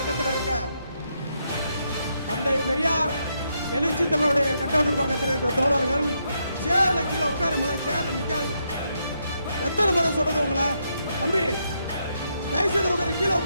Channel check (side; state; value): both; inverted; correlation -0.79